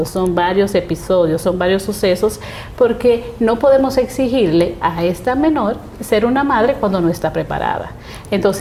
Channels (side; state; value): both; identical; correlation 1.00